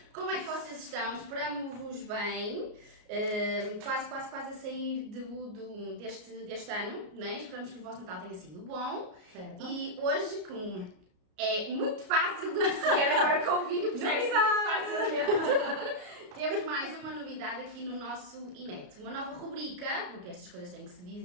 Como é que vocês estão? Esperamos-vos bem. Quase a sair deste ano, né? Esperamos que o vosso Natal tenha sido bom. Certo. E hoje, como é muito fácil de perceber agora com o vídeo, percebe-se muito facilmente. Temos mais uma novidade aqui no nosso Inet, uma nova rubrica, porque estas coisas têm que se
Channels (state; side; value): late; left; 33 ms